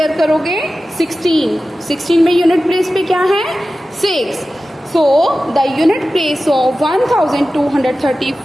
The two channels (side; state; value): both; normal; correlation 0.95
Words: करोगे 16 में यूनिट प्लेस पे क्या है 6. So the unit place of